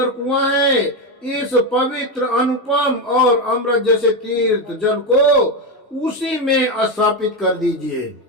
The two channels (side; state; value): both; normal; correlation 0.11